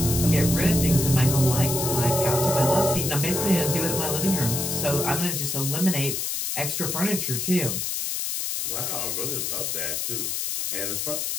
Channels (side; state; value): left; noise; hiss, 1 dB below the sound